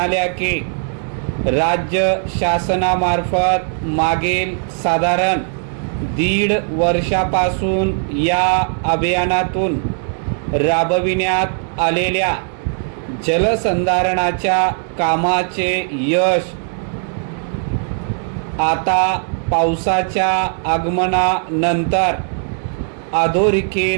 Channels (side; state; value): left; silent; 60 dB below the other